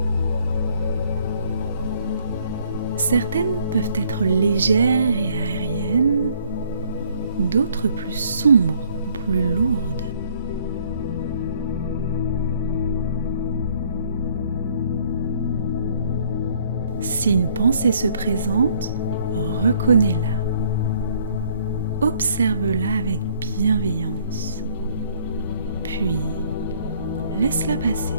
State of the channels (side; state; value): both; inverted; correlation -0.62